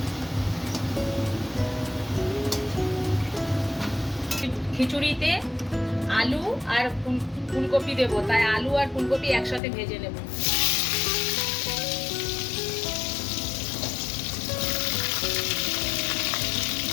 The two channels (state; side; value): drops out; right; at 9.6 s